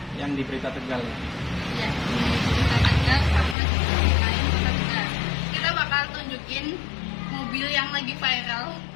yang di Berita Tegal. Ya, Berita Tegal sama Berita Tegal. Kita bakal tunjukin mobil yang lagi viral,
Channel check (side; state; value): right; drops out; at 3.6 s